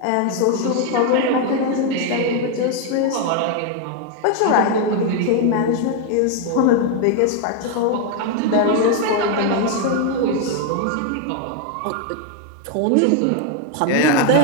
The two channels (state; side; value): different; both; correlation 0.01